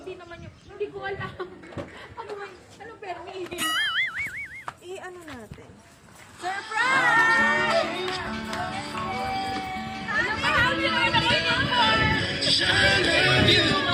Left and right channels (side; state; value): both; identical; correlation 1.00